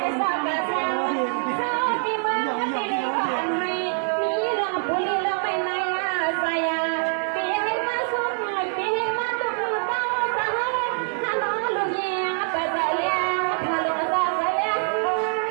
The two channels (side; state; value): left; silent; 56 dB below the other